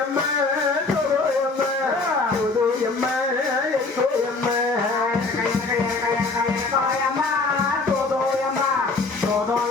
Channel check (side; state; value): right; quieter; 3.7 dB